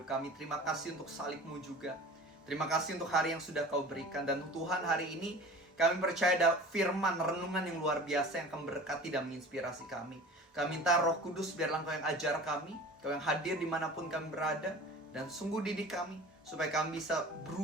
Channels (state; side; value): normal; both; correlation 0.40